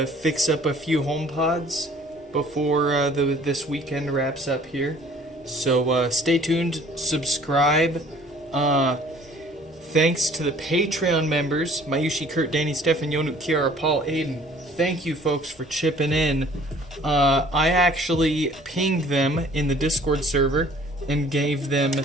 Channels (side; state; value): both; normal; correlation 0.54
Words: fix up a few HomePods before this weekend wraps up here. So stay tuned, subscribe. Thanks to the Patreon members, Mayushi, Kurt, Danny, Stefan, Yonu, Kiara, Paul, Aiden. Thank you folks for chipping in. I actually pinged them in the Discord server and gave them